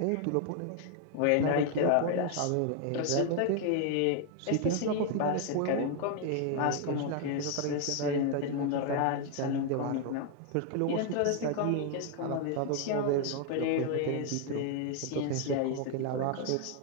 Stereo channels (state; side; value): different; both; correlation 0.00